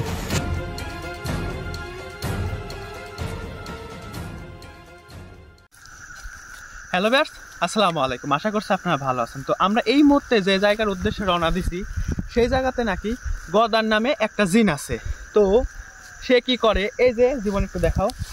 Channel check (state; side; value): identical; both; correlation 1.00